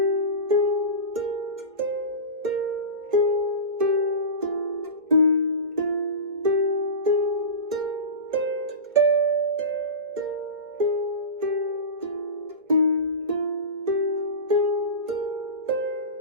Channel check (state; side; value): late; left; 1.5 ms